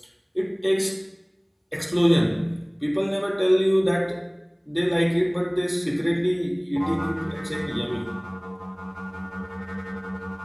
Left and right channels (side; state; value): both; identical; correlation 1.00